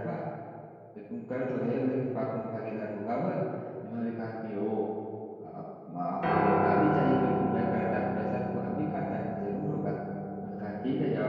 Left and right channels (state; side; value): identical; both; correlation 1.00